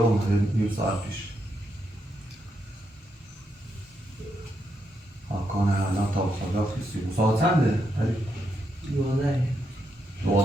اومده نیم ساعت پیش حکانه الان تا خدا خیستی ساعت چنده؟ علی؟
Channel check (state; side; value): normal; both; correlation 0.81